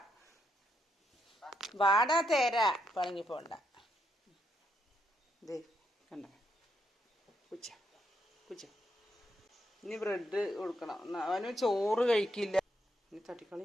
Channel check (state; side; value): normal; both; correlation 0.78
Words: വാടാ തേര പണങ്ങി പോണ്ട. ദേ കണ്ട കുച്ച. ഇനി ബ്രെഡ് കൊടുക്കണം. അവന് ചോറ് കഴിക്കില്ല. ഇനി തട്ടിക്കളി.